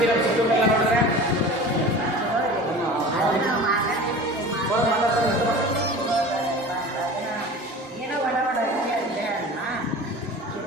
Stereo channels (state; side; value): normal; both; correlation 0.38